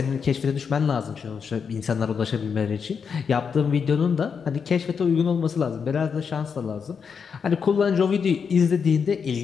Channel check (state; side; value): quieter; right; 6.3 dB